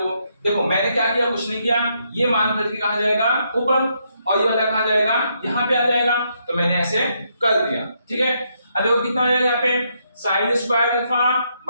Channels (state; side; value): inverted; both; correlation -0.76